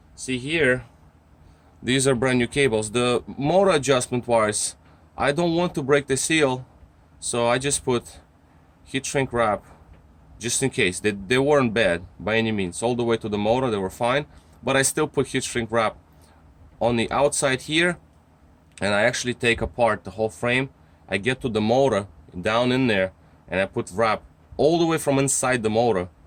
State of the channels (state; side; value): identical; both; correlation 1.00